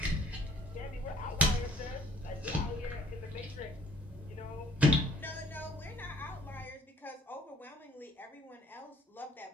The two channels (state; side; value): normal; both; correlation 0.58